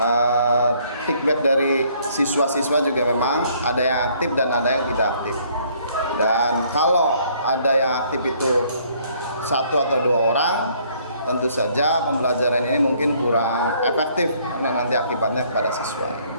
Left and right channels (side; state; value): both; inverted; correlation -0.63